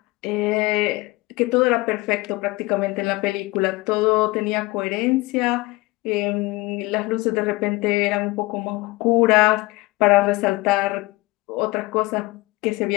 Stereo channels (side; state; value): right; quieter; 22.1 dB